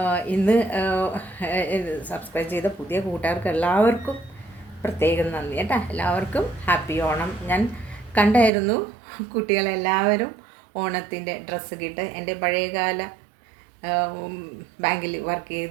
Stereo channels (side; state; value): left; drops out; at 8.5 s